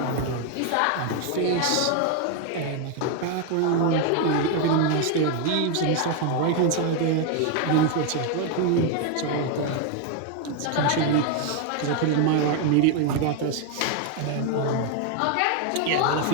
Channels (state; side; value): different; both; correlation 0.01